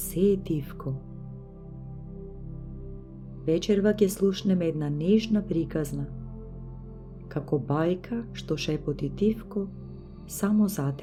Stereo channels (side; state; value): both; identical; correlation 1.00